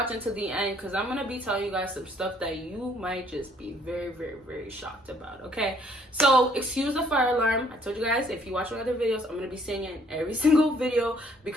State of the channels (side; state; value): both; normal; correlation 0.63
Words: until the end because I'm gonna be telling you guys some stuff that you might just be very shocked about. Okay, so excuse the fire alarm. I told you guys, if you watch my other videos, I'm gonna be saying it in every single video